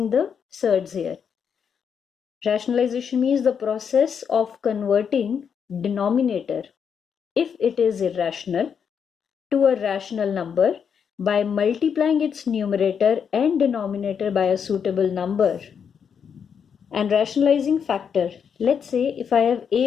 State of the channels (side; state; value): right; quieter; 7.2 dB